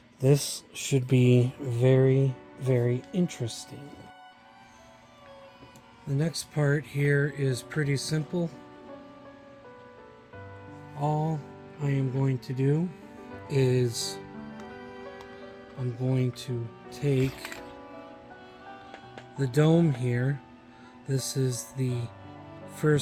This should be very, very interesting. The next part here is pretty simple. All I am going to do is I'm going to take the dome here. This is the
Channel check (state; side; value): identical; both; correlation 1.00